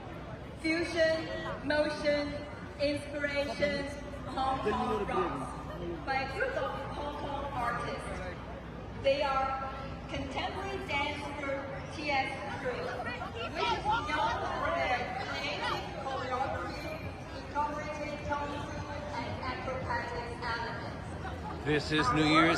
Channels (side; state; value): both; identical; correlation 1.00